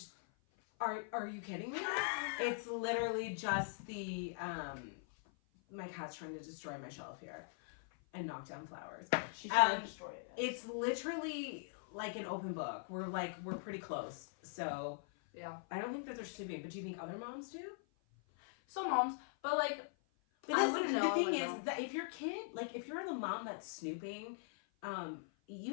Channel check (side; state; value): right; silent; 50 dB below the other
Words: are you kidding me? It's literally just the my cat's trying to destroy my shelf here and knock down flowers. She's trying to destroy it. It's literally like an open book. We're pretty close. So. Yeah. I don't think that they're snooping, but do you think other moms do? Some moms, but like, but the thing is that if your kid, like, if you're the mom that's snooping,